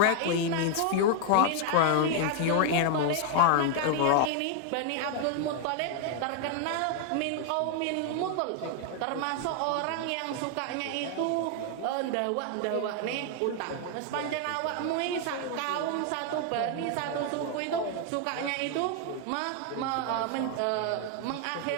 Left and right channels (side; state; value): both; different; correlation 0.00